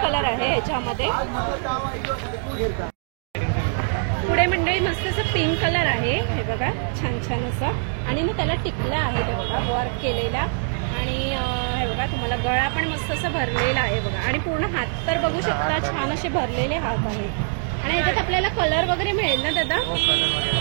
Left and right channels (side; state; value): left; silent; 63 dB below the other